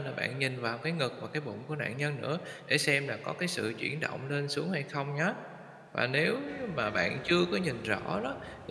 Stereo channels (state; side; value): identical; both; correlation 1.00